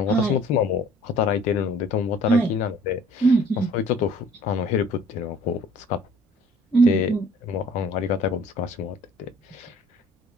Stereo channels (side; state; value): both; normal; correlation 0.54